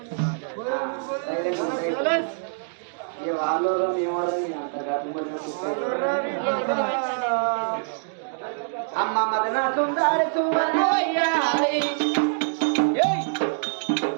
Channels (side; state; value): left; silent; digital silence